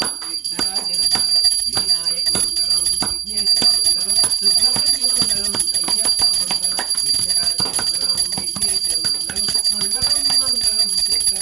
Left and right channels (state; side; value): quieter; left; 10.0 dB